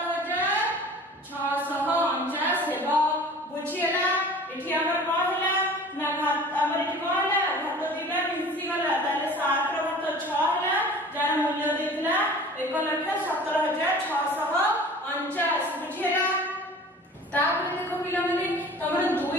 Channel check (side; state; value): both; normal; correlation 0.44